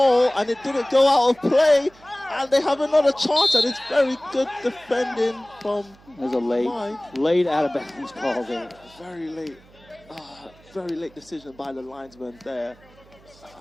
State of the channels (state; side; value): noise; right; hum, 26 dB below the sound